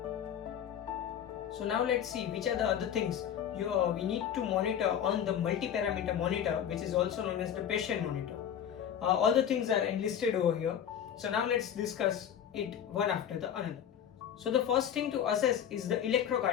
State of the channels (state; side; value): quieter; right; 9.3 dB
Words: So now let's see which are the other things we need to monitor on the multi-parameter monitor, which is also known as the patient monitor. All the things are enlisted over here. So now let's discuss it one after the another. So the first thing to assess is the